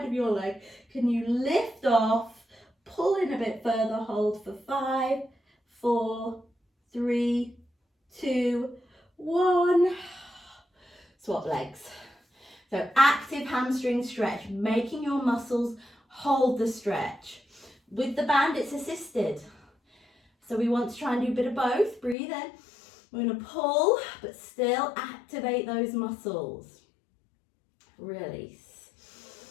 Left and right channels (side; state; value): right; drops out; at 22.2 s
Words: of your leg. Can you lift off? Pull in a bit further. Hold for 5, 4, 3, 2, 1. Swap legs. So active hamstring stretch, making your muscles hold the stretch. With the band, it's assisted. So we want to try and do a bit of both. Breathe in. We're going to pull, but still activate those muscles. Release.